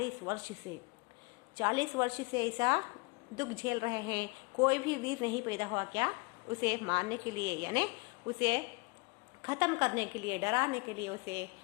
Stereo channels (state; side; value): quieter; right; 28.7 dB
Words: वर्ष से ऐसा दुख झेल रहे हैं, कोई भी वीर नहीं पैदा हुआ क्या उसे मारने के लिए, यानी उसे खत्म करने के लिए, डराने के लिए, उसे